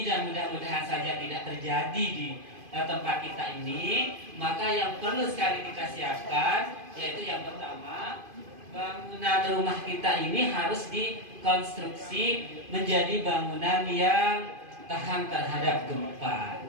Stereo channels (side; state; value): left; late; 2.5 ms